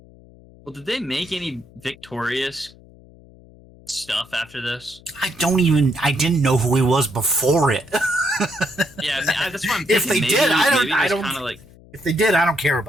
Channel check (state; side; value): noise; left; hum, 24 dB below the sound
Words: Well, did they make any victorious stuff after this? I didn't know who he was before it. Yeah, that's what I'm If thinking. they did, I don't. Kind of like, If they did, I don't care